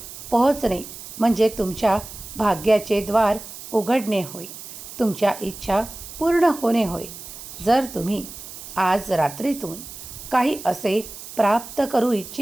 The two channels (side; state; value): right; noise; hiss, 13 dB below the sound